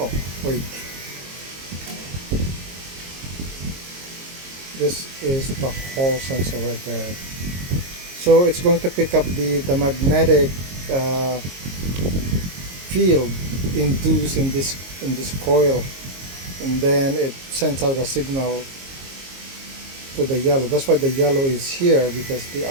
wait. This is the Hall sensor right there. So it's going to pick up the magnetic field induced in this coil, and then it sends out a signal to the yellow. That's why the yellow is here, because the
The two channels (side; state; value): left; late; 22 ms